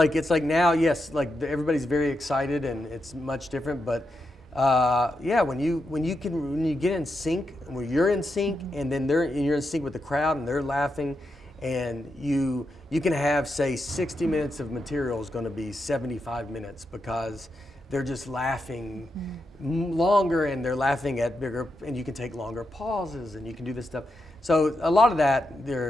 like now, yes, like everybody's very excited and it's much different. But when you get in sync, when you're in sync, and then you're in sync with the crowd and they're laughing, and you can have, say, 60 minutes of material is going to be 75 minutes because they're just laughing longer and they're laughing at bigger, and you can take longer pauses and you can do this stuff. So a lot of that,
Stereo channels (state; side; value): normal; both; correlation 0.85